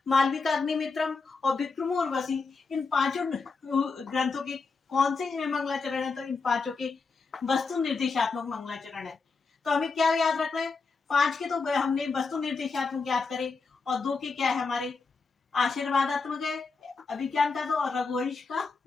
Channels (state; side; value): quieter; right; 4.5 dB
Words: मालविका अग्निमित्रम और विक्रमो उर्वशी। इन 5 ग्रंथों के कौन से मंगलाचरण है, तो इन 5 के वस्तु निर्देशात्मक मंगलाचरण है। तो हमें क्या याद रखना है, 5 के तो हमने वस्तु निर्देशात्मक याद करे, और 2 के क्या है हमारे आशीर्वादात्मक है अभिज्ञान का, तो और रघुवंश का